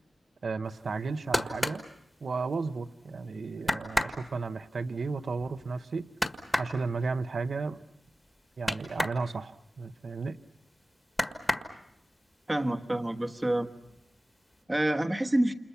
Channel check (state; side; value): normal; both; correlation 0.96